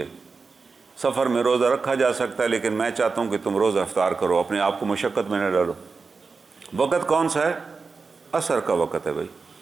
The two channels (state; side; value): quieter; left; 4.6 dB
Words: سفر میں روزہ رکھا جا سکتا ہے لیکن میں چاہتا ہوں کہ تم روزہ افطار کرو، اپنے آپ کو مشقت میں نہ ڈالو۔ وقت کون سا ہے؟ عصر کا وقت ہے بھائی۔